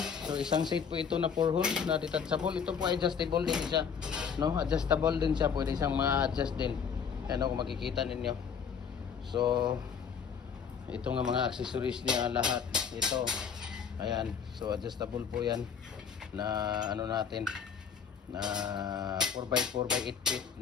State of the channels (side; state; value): right; quieter; 6.9 dB